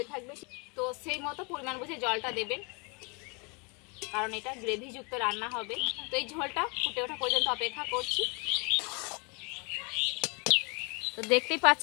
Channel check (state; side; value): quieter; right; 31.7 dB